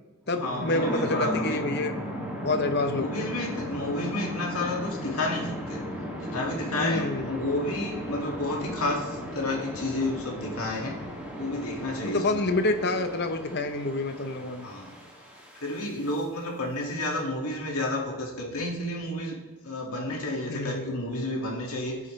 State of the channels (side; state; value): both; normal; correlation 0.18